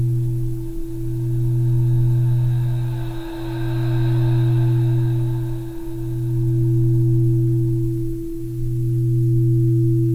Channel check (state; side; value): identical; both; correlation 1.00